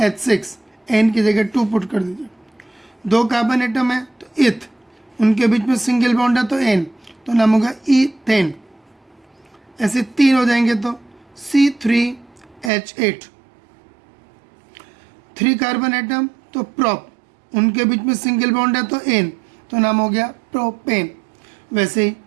एन की जगह 2 पुट कर दीजिए। 2 कार्बन एटम है तो इथ, उनके बीच में सिंगल बॉन्ड है तो एन, तो नाम होगा ईथेन। ऐसे 3 हो जाएंगे तो C3H8। 3 कार्बन एटम तो प्रॉप, उनके बीच में सिंगल बॉन्ड है तो एन, तो नाम हो गया प्रोपेन। वैसे ही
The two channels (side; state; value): left; drops out; at 12.7 s